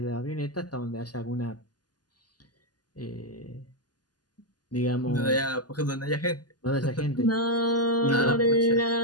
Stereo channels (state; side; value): late; right; 0.70 ms